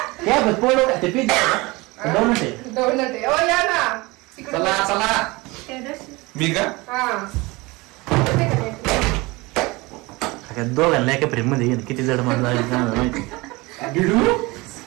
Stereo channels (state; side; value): quieter; left; 23.4 dB